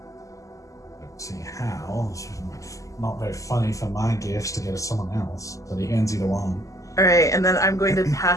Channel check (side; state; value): right; late; 0.16 ms